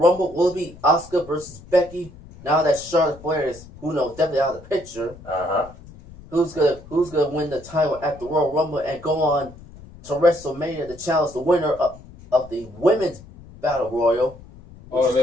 Will it be Asuka versus Becky? Now that Charlotte Flair is, who knows, definitely out of the picture. Who's gonna win the title at the Royal Rumble and go on to WrestleMania to challenge the winner of the Women's Battle Royal? Oh, is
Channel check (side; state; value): left; noise; rumble, 20 dB below the sound